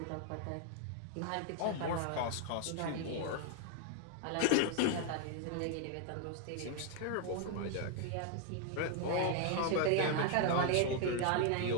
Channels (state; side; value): different; both; correlation 0.00